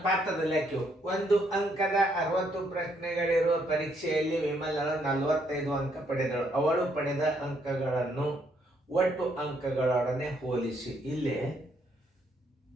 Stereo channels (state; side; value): normal; both; correlation 0.72